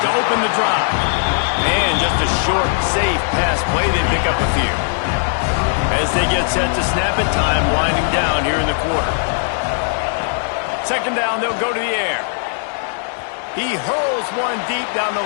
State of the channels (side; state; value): right; silent; 67 dB below the other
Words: to open the drive. And just a short, safe pass play. They pick up a few. As they get set to snap it, time winding down here in the quarter. Second down, they'll go to the air. He hurls one deep down